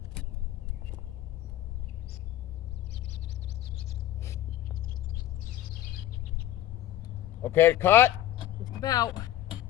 Okay, cut. Just about.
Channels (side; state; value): right; quieter; 13.2 dB